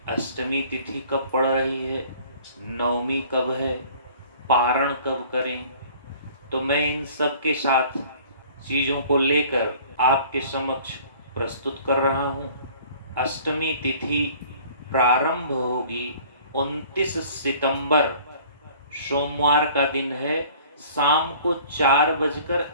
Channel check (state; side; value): inverted; both; correlation -0.50